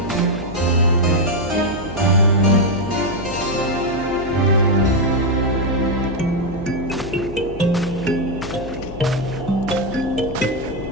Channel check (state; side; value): noise; left; hum, 14 dB below the sound